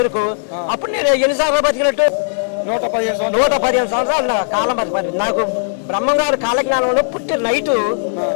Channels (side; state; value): right; silent; digital silence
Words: అప్పుడు నేను ఎన్నిసార్లు బతికినట్టు? 115 సంవత్సరాలు కాలం బతికి. నాకు బ్రహ్మంగారు కాలజ్ఞానంలో పుట్టి నైటు